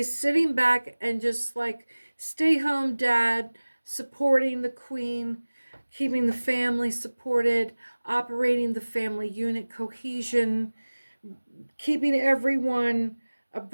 sitting back and just like, stay home, dad, supporting the Queen, keeping the family supported, operating the family unit cohesion, keeping everyone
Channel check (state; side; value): inverted; both; correlation -1.00